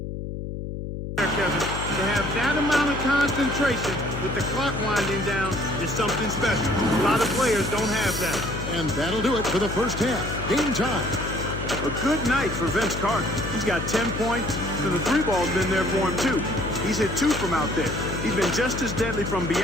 Kevin, to have that amount of concentration with the clock winding down is something special. A lot of players don't have that. And that'll do it for the first half. Game time. A good night for Vince Carter. He's got 10 points, and the 3 ball's been there for him, too. He's hit 2 from out there. He's been just as deadly from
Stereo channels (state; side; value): noise; left; hum, 6 dB below the sound